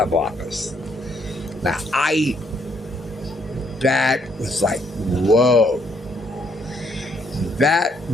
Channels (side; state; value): both; normal; correlation 0.70